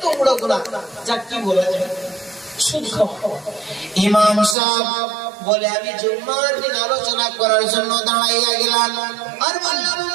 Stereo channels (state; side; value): drops out; left; at 4.5 s